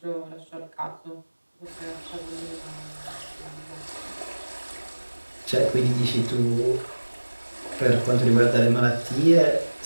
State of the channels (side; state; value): both; inverted; correlation -1.00